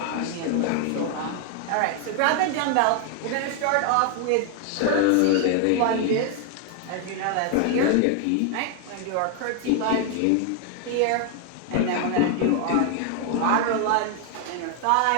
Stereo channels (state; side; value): different; both; correlation 0.00